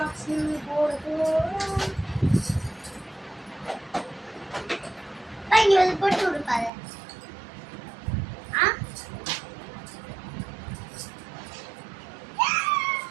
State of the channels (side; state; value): left; drops out; at 6.7 s